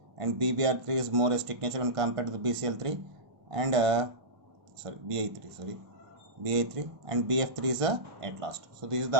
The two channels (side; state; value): left; late; 1.5 ms